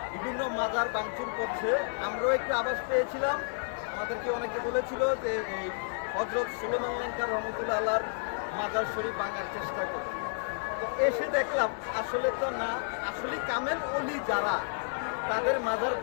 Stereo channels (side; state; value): right; silent; digital silence